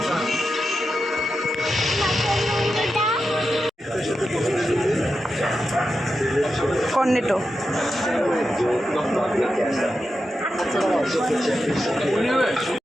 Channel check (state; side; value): normal; both; correlation 0.89